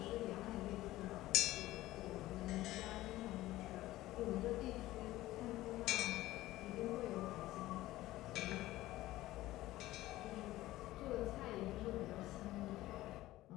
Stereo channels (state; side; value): quieter; right; 16.4 dB